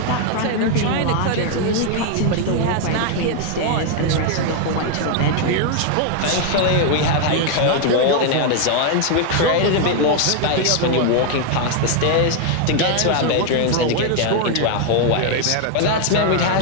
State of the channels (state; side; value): different; both; correlation 0.00